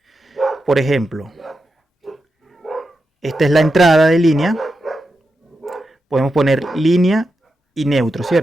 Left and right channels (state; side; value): normal; both; correlation 0.88